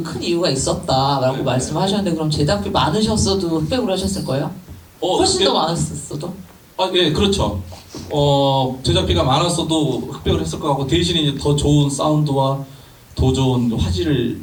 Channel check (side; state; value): both; identical; correlation 1.00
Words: 큰 이유가 있었다라고 네, 말씀하셨는데, 그럼 제작비 많으셨어도 흑백으로 하셨을 거예요? 훨씬 더 많았어도? 예, 그렇죠. 제작비가 많았어도 흑백을 했을 것 같고, 대신에 이제 더 좋은 사운드와 더 좋은 화질을